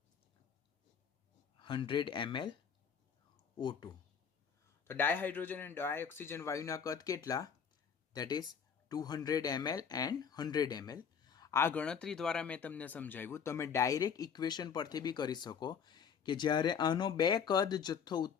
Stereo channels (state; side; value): quieter; right; 7.1 dB